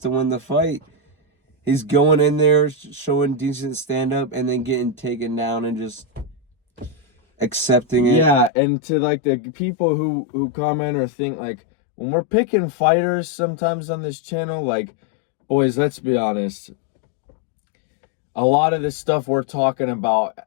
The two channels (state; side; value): drops out; right; at 8.5 s